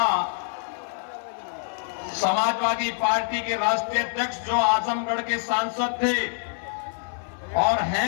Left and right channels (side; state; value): right; silent; 61 dB below the other